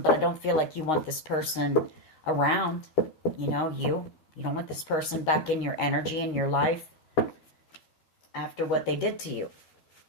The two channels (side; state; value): right; late; 13 ms